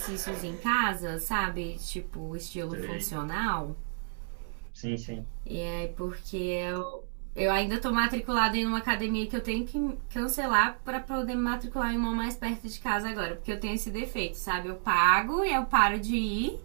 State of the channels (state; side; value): silent; left; digital silence